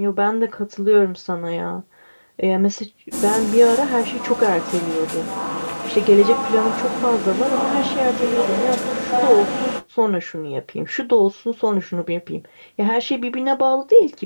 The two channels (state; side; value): inverted; both; correlation -1.00